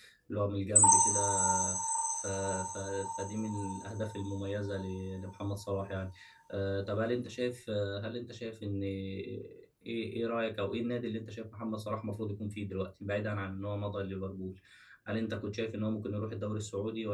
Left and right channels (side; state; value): both; identical; correlation 1.00